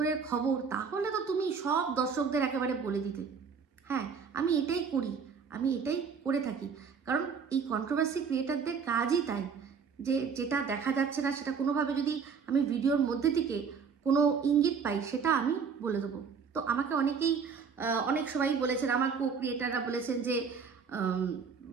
খবর, তাহলে তো তুমি সব দর্শকদের একেবারে বলে দিতে। হ্যাঁ, আমি এটাই করি, আমি এটাই করে থাকি, কারণ এই কন্ট্রোভার্সি ক্রিয়েটারদের কাজই তাই, যে যেটা দেখা যাচ্ছে না সেটা কোনোভাবে যদি আমি ভিডিওর মধ্যে থেকে কোনো ইঙ্গিত পাই, সেটা আমি বলে দেবো। তো আমাকে অনেকেই অনেক সবাই বলেছেন, আমার কো ক্রিয়েটাররা বলেছেন যে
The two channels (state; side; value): quieter; left; 6.0 dB